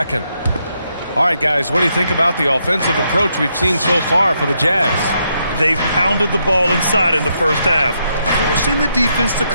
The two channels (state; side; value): inverted; both; correlation -0.78